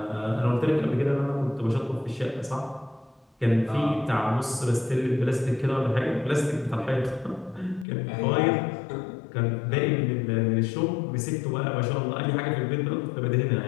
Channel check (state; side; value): drops out; right; at 7.9 s